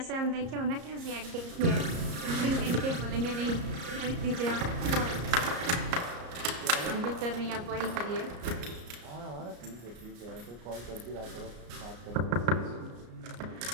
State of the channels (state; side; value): late; left; 34 ms